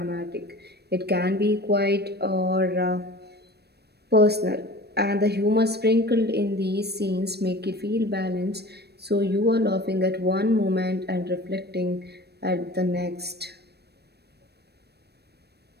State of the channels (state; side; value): late; left; 0.47 ms